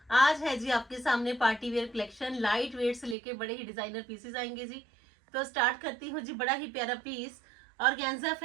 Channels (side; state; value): left; drops out; at 3.2 s